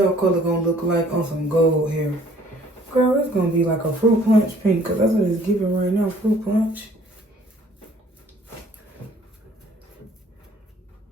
color gonna look like on some gold hair. Girl, it's gonna be like a fruit punch pink, cause that's what it's giving right now, fruit punch.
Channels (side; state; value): both; normal; correlation 0.57